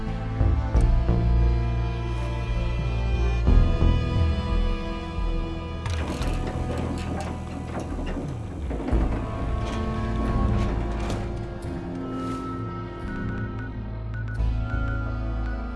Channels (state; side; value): identical; both; correlation 1.00